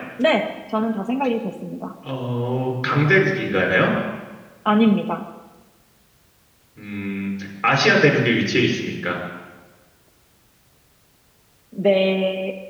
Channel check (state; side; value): identical; both; correlation 1.00